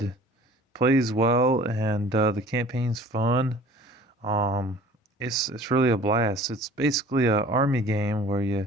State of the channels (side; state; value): both; normal; correlation 0.48